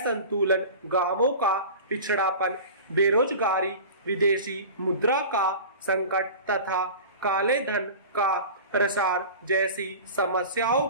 गांवों का पिछड़ापन, बेरोजगारी, विदेशी मुद्रा का संकट तथा काले धन का प्रसार जैसी समस्याओं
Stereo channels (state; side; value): inverted; both; correlation -0.35